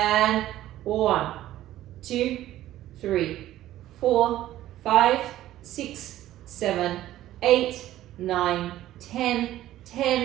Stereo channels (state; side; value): quieter; left; 14.0 dB